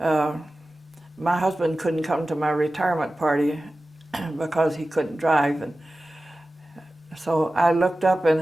husband couldn't come to my retirement party because he couldn't drive. And so I looked up and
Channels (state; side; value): normal; both; correlation 0.95